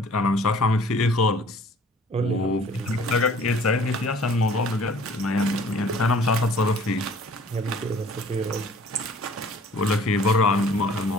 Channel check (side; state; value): both; normal; correlation 0.52